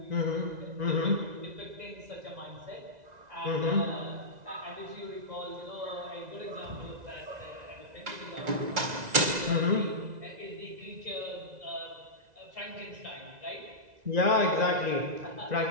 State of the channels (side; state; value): left; late; 2.0 ms